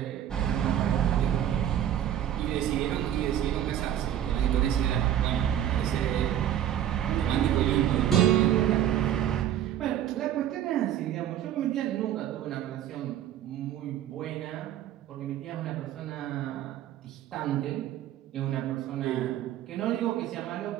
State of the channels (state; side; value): quieter; left; 11.0 dB